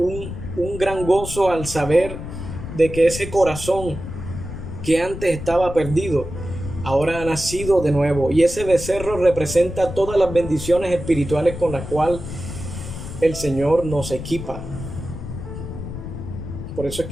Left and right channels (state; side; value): noise; left; rumble, 9 dB below the sound